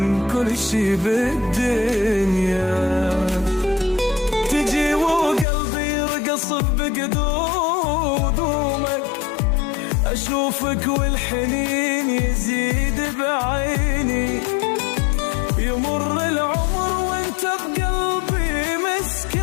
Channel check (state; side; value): drops out; right; at 5.5 s